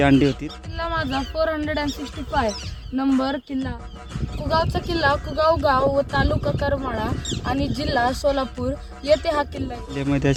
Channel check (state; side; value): identical; both; correlation 1.00